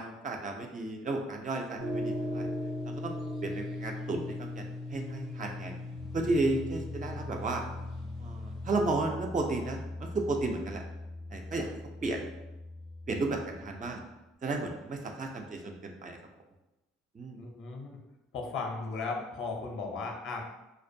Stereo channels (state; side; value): normal; both; correlation 0.67